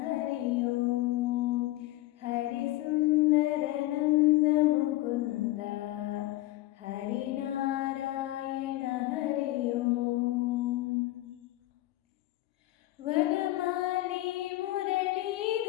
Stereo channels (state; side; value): quieter; right; 17.2 dB